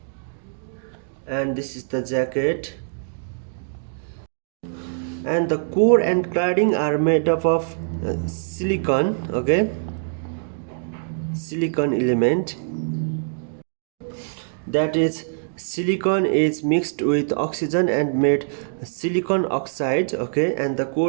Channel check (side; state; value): left; silent; digital silence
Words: and this is the jacket. And the core and cladding are made up of silicon. Okay, silicon element, that is silicon is mixed with oxygen and made silicon oxide. Okay, and the